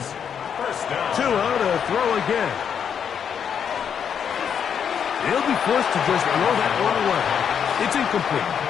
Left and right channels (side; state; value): right; quieter; 7.8 dB